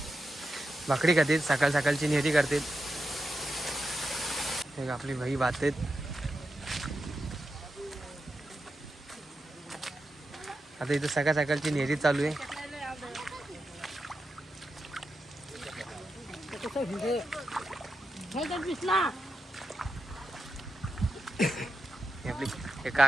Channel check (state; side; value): normal; both; correlation 0.89